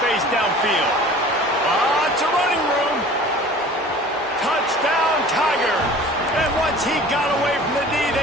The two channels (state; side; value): normal; both; correlation 0.44